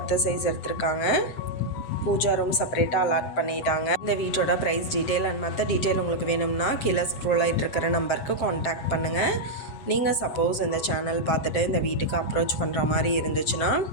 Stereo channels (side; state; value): right; late; 7.7 ms